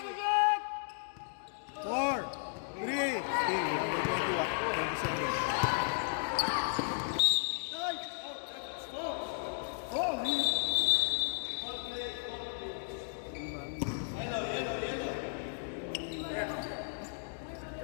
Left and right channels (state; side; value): silent; right; digital silence